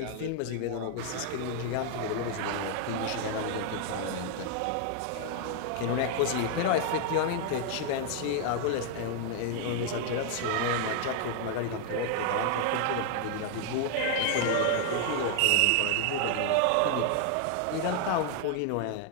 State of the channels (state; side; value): different; both; correlation 0.00